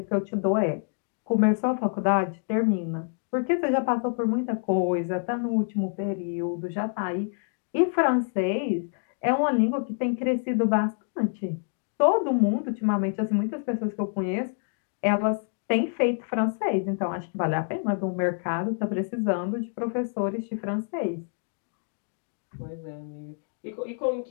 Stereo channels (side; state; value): right; silent; 60 dB below the other